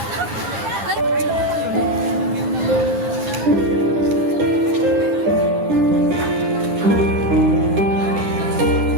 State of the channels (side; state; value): left; late; 10 ms